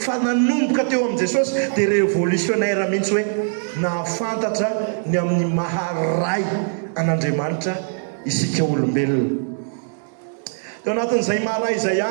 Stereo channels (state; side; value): silent; left; digital silence